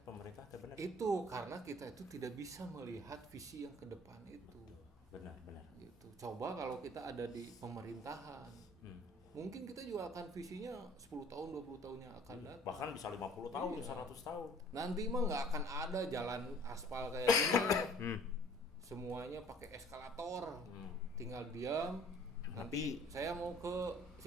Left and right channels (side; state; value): both; normal; correlation 0.52